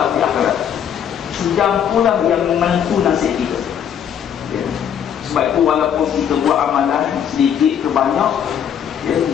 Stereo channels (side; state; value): right; quieter; 8.8 dB